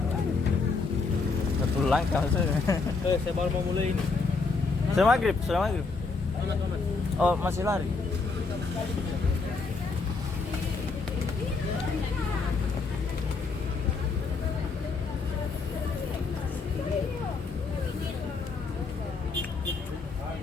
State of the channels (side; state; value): right; quieter; 4.3 dB